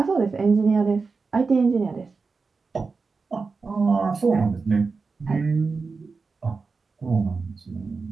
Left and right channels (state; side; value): quieter; left; 4.5 dB